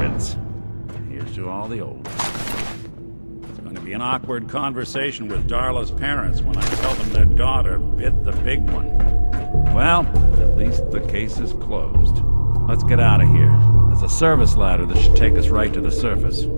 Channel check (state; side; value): inverted; both; correlation -1.00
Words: Here's to all the old. It's going to be an awkward conversation with Darla's parents when I tell them their daughter bit the big one. Well, at least the case is closed. Let's get out of here. There's a service ladder that should take us right to the surface.